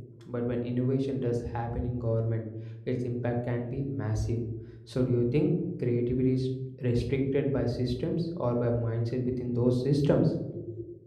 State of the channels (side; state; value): both; identical; correlation 1.00